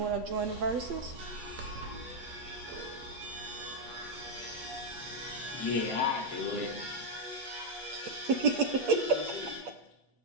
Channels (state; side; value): late; left; 8.4 ms